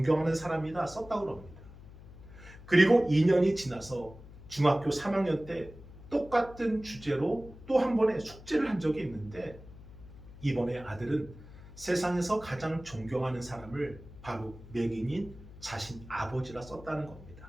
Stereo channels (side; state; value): left; noise; hum, 18 dB below the sound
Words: 사람이다 썼다고 합니다. 그리고 2년이 지나서 중학교 3학년 때 똑같은 주제로 또 한 번의 숙제를 한 적이 있는데, 이번에 아들은 세상에서 가장 존경하는 사람을 바로 맹인인 자신 아버지라 썼다는